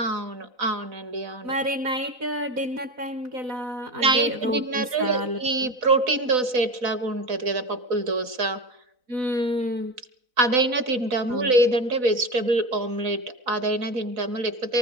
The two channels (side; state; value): left; late; 4.0 ms